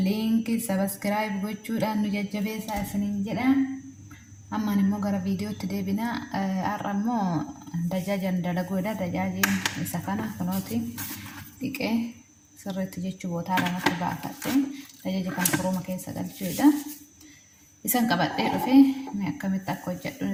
لينك سبسكرايب وجود أنو ججبه ساسنين جدا أما نمو غرا فيديو تدي بنا أرمو دجاجا دلقودا دجاجين سكنا كنوتي ديكي سرت جيتشو بوتالا نتبع فتين دجاجا كان فروما كيسا قلتشودا isan qabadhee dhufe mee akkamitti akka hojjedhu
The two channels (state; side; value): identical; both; correlation 1.00